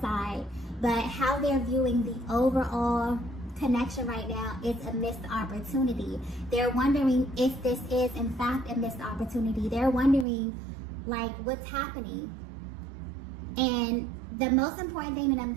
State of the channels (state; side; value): drops out; left; at 10.2 s